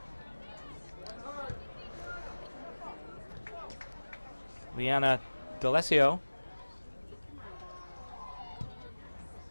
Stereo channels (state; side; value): inverted; both; correlation -1.00